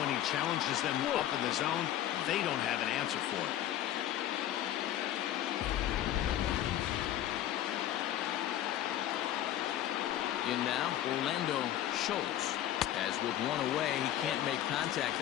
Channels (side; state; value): right; quieter; 12.3 dB